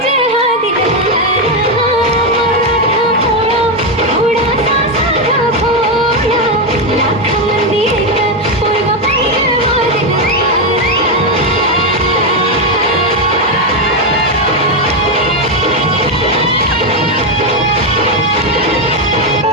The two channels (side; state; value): both; normal; correlation 0.07